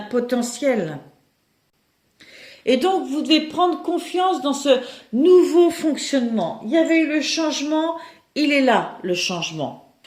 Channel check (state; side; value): identical; both; correlation 1.00